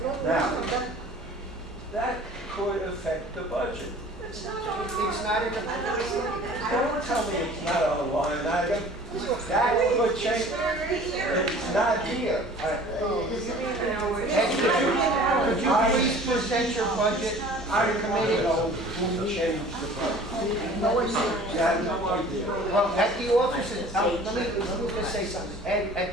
Now, that could affect the budget. It's not in the. Don't tell me it's not on the line item. That would change. It's not here. Could you please present your budget I to the want to committee? know who changed the budget. No idea. You have no idea. Well, at the offices, let me just say something. At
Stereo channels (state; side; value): normal; both; correlation 0.47